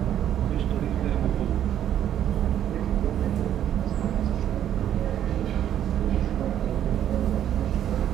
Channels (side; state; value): left; quieter; 10.6 dB